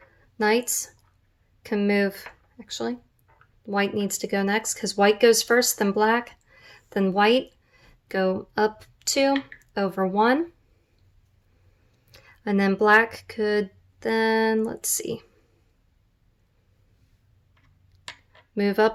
Knights can move, actually, white needs to go next because white goes first, then black, then white, go up 2, over 1. And then black could then, let's see, move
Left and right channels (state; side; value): identical; both; correlation 1.00